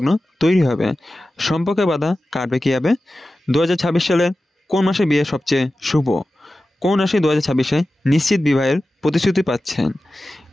তৈরি হবে, সম্পর্কে বাধা কাটবে কীভাবে, 2026 সালের কোন মাসে বিয়ে সবচেয়ে শুভ, কোন রাশি 2026-এ নিশ্চিত বিবাহের প্রতিশ্রুতি পাচ্ছেন,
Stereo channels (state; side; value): normal; both; correlation 0.94